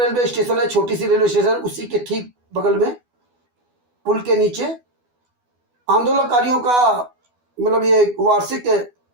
रेलवे स्टेशन है, छोटी सी रेलवे स्टेशन, उसी के ठीक बगल में पुल के नीचे आंदोलनकारियों का मतलब ये वार्षिक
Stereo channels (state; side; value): late; left; 12 ms